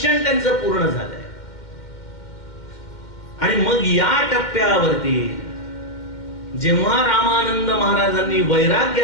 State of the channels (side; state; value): right; late; 2.1 ms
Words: त्यांचं पूर्ण झालंय. आणि मग या टप्प्यावरती जेव्हा रामानंद महाराजांनी